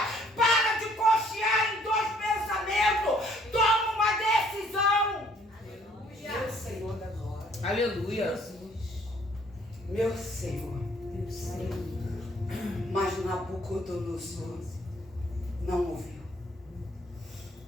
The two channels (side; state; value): both; normal; correlation 0.62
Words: para de cochear em dois pensamentos, toma uma decisão. Aleluia. Meu Senhor da glória. Aleluia. Meu Senhor. Mas Nabucodonosor não ouviu.